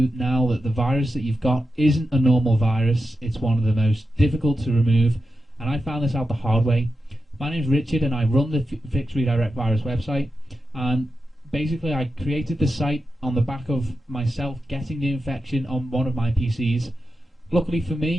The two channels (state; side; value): normal; both; correlation 0.90